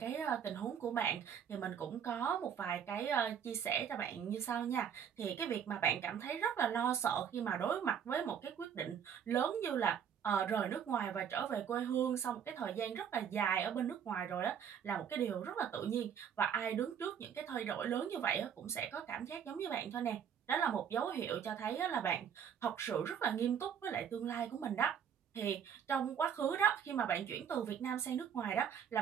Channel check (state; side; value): quieter; left; 8.2 dB